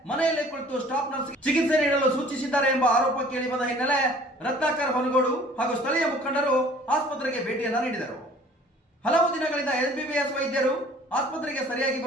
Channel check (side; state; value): both; normal; correlation 0.52